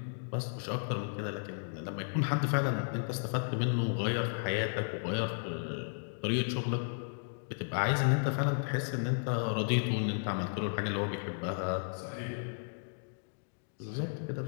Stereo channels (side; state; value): right; silent; digital silence